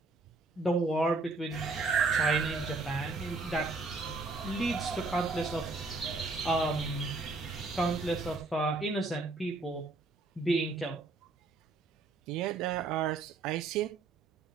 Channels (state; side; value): quieter; left; 3.5 dB